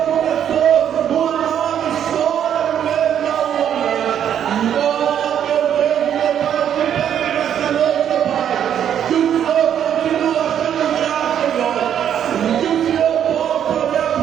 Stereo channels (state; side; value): quieter; left; 9.4 dB